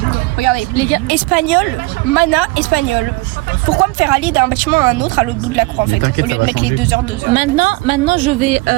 Regardez, les gars, espagnol, mana, espagnol. Pourquoi me faire aller d'un bâtiment à un autre à l'autre bout de la cour en fait, au lieu de mettre les 2 heures, 2 heures. Maintenant je vais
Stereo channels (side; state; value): left; quieter; 22.7 dB